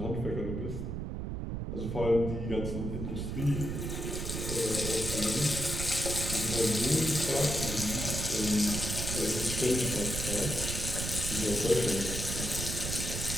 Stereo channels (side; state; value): right; noise; rumble, 3 dB below the sound